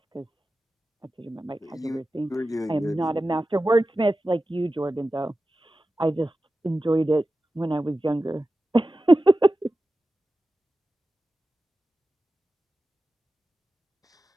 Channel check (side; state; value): both; normal; correlation 0.94